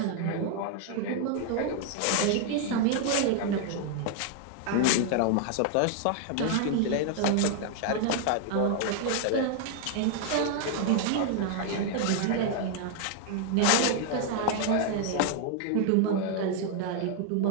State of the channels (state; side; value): different; both; correlation 0.00